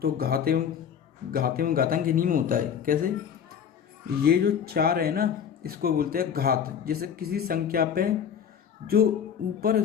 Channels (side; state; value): right; quieter; 8.0 dB